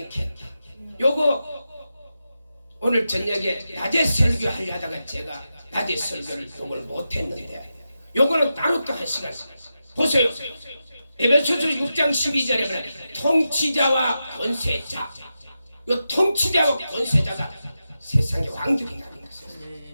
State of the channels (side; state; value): both; inverted; correlation -0.89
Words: 요거 오늘 저녁에 낮에 설교하려다가 제가 낮에 설교를 요걸 못했는데 요거는 따로 또 한 시간 보세요. 에베소서 6장 12절에 보면 통치자와 권세자 요 통치자와 권세자가 세상의 왕들이라는